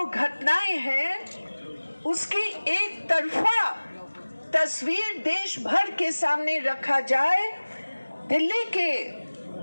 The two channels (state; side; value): inverted; both; correlation -1.00